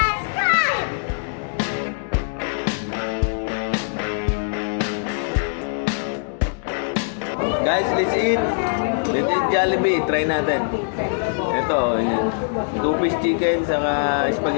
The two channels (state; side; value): silent; right; digital silence